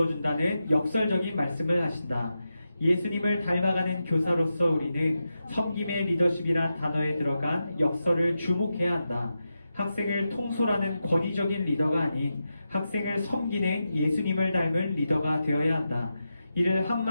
준다는 역설적인 말씀을 하신다. 예수님을 닮아가는 교사로서 우리는 섬김의 리더십이란 단어에 들어간 역설을 주목해야 한다. 학생을 통솔하는 권위적인 리더가 아닌 학생을 섬기는 예수님을 닮은 리더가 되어야 한다. 이를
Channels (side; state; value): both; inverted; correlation -0.89